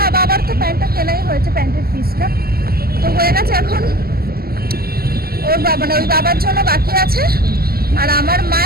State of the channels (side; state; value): left; late; 0.44 ms